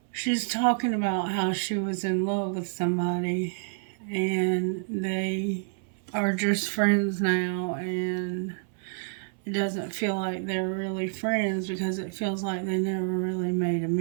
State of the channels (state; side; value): silent; left; 59 dB below the other